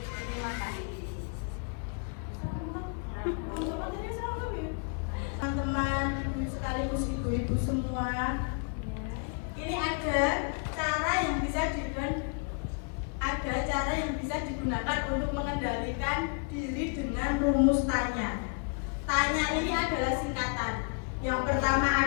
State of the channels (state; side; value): quieter; right; 37.3 dB